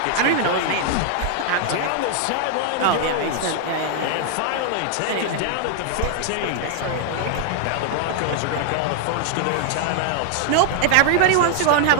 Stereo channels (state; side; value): different; both; correlation 0.00